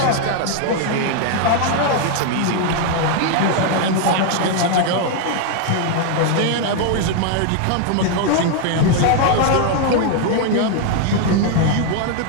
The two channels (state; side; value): different; both; correlation 0.00